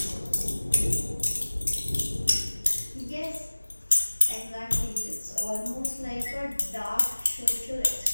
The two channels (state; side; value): inverted; both; correlation -1.00